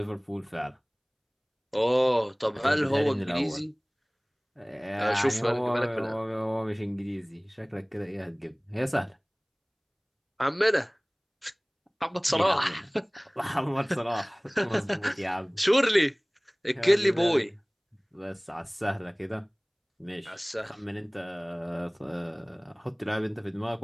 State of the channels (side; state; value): both; identical; correlation 1.00